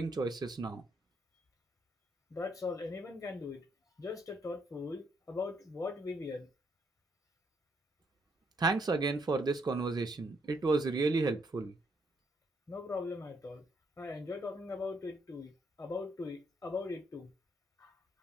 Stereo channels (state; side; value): normal; both; correlation 0.73